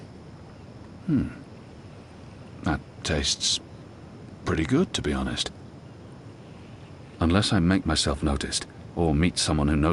That tastes pretty good, to be honest. Unless I make myself noticed, or meet someone who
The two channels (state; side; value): identical; both; correlation 1.00